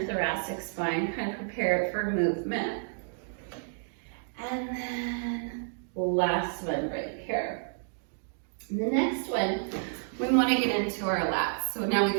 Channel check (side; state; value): left; silent; digital silence